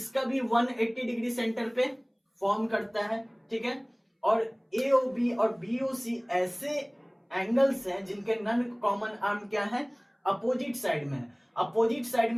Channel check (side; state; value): both; identical; correlation 1.00